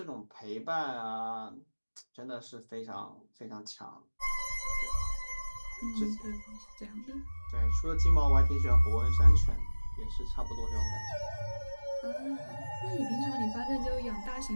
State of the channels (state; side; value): inverted; both; correlation -1.00